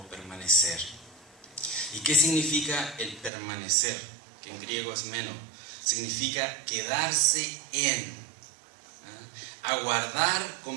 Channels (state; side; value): drops out; left; at 3.3 s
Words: permanecer. ¿Y qué significa el permanecer? Que en griego es meno. Significa quedarse en. Aguardar